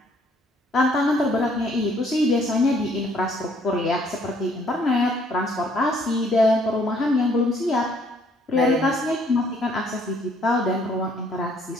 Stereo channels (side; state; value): both; normal; correlation 0.64